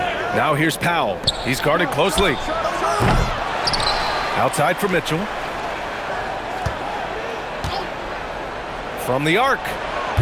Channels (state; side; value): identical; both; correlation 1.00